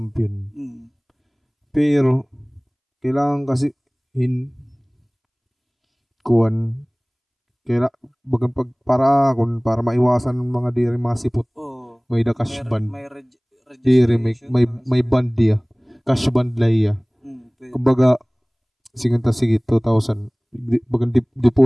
pero kailangan kasi kuan bagan para maiwasan ng mga diri masipot may da cash band diri may band dia cash band laya kumbaga sige 2,000 bagan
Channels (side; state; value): both; identical; correlation 1.00